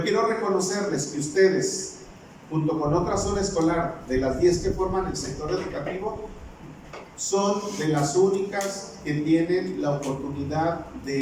quiero reconocerles que ustedes, junto con otra zona escolar, de las 10 que forman el sector educativo, son de las únicas que tienen la oportunidad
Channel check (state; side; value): identical; both; correlation 1.00